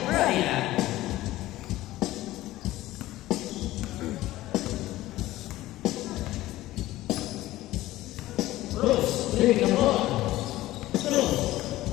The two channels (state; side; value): quieter; right; 16.3 dB